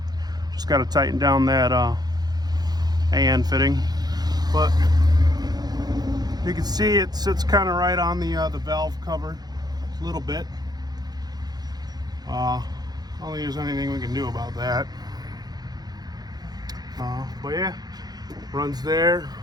Just got to tighten down that AN fitting. But you can see it sits kind of right on the valve cover a little bit. I don't think there's anything we can do about that. But yeah, runs there,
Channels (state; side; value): late; left; 0.19 ms